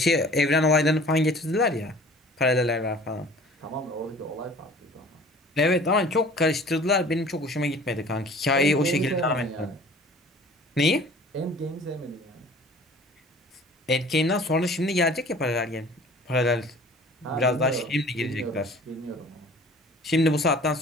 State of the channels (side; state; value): both; normal; correlation 0.48